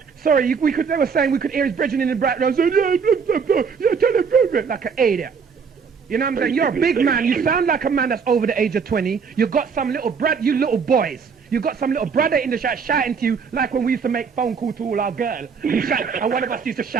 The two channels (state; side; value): quieter; left; 5.9 dB